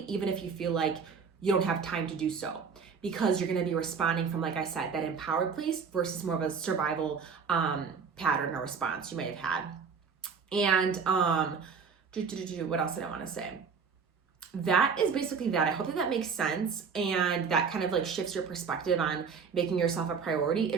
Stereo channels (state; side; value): quieter; left; 5.8 dB